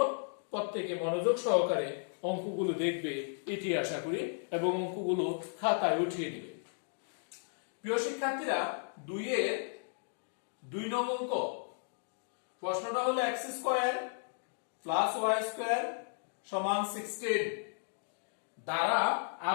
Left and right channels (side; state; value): right; silent; digital silence